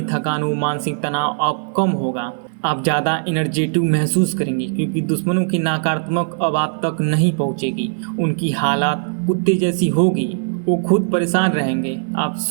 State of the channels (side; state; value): left; silent; digital silence